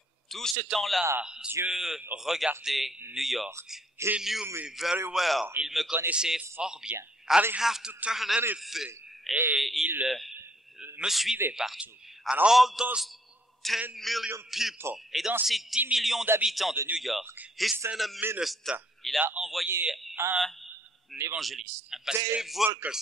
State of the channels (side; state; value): both; normal; correlation 0.65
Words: Tout ce temps-là, Dieu regardait New York. He knew me very well. Il me connaissait fort bien. I didn't have to turn anything. Et il me suivait partout. And all those 10 million people, Et dans ces 10 millions d'habitants de New York, he sent a minister, il a envoyé un évangéliste, un pasteur, Dave